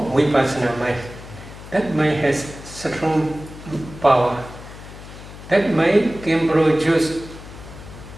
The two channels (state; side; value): noise; left; hum, 15 dB below the sound